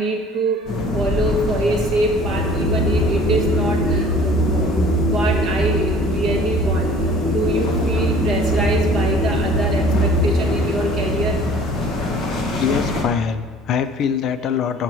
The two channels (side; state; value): both; normal; correlation 0.50